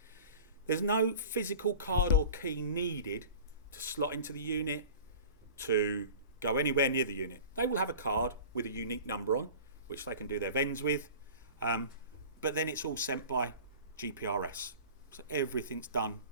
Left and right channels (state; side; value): inverted; both; correlation -0.40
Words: There's no physical card or key needed to slot into the unit, to go anywhere near the unit. They will have a card with a unique number on, which they can do their vends with, but then it's all sent by GPRS. So everything's done